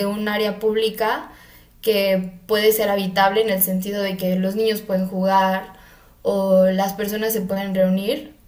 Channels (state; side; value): identical; both; correlation 1.00